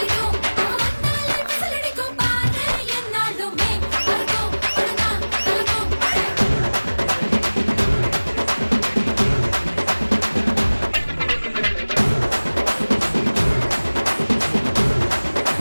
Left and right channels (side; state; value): both; inverted; correlation -1.00